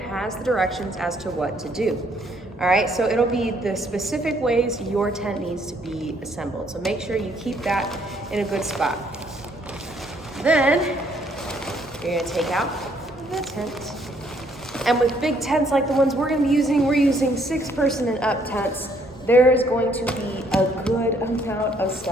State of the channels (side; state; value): both; normal; correlation 0.67